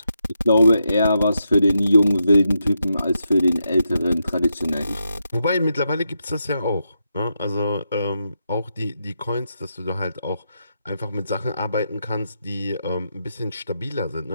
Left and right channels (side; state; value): both; inverted; correlation -0.84